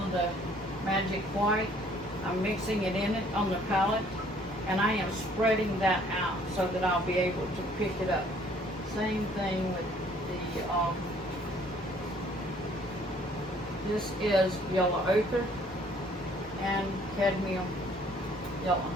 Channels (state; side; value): normal; both; correlation 0.59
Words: the magic white. I'm mixing it in it on the palette. And I am spreading that out so that I'll be able to pick it up. Same thing with the, this is yellow ochre and cadmium yellow.